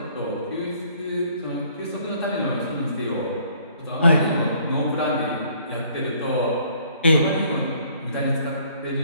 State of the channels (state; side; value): inverted; both; correlation -0.60